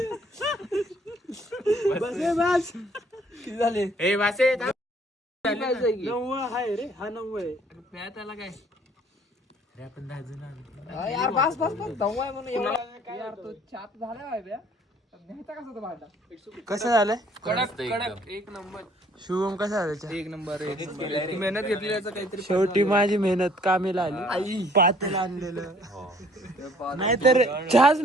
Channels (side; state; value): both; normal; correlation 0.59